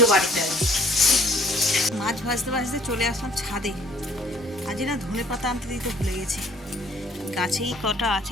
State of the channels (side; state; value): both; normal; correlation 0.57